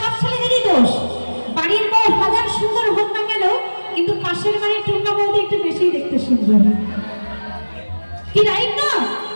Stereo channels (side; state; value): both; inverted; correlation -1.00